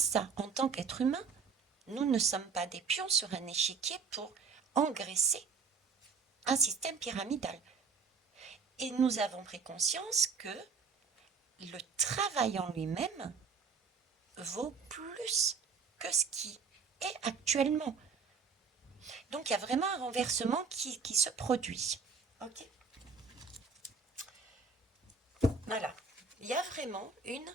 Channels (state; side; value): quieter; left; 5.2 dB